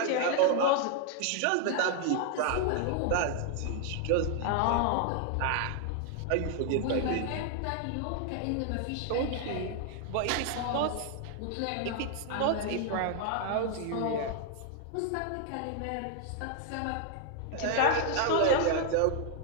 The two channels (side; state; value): both; different; correlation 0.00